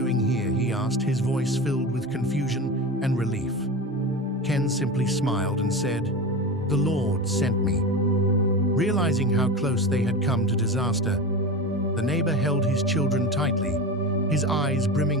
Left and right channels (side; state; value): both; normal; correlation 0.25